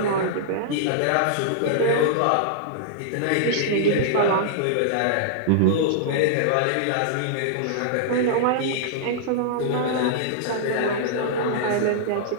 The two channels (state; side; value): different; both; correlation -0.02